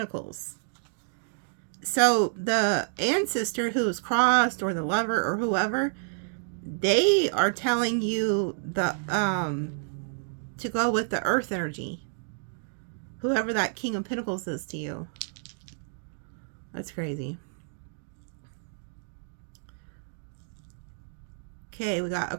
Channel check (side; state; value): left; silent; digital silence